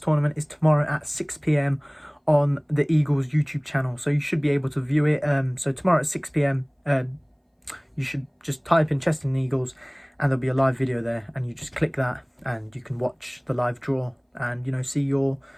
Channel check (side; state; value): both; identical; correlation 1.00